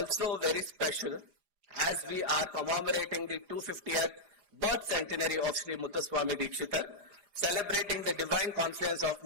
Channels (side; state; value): left; late; 4.9 ms